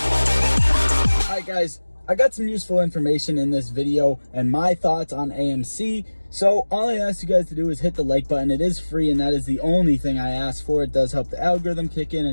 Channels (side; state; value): both; inverted; correlation -1.00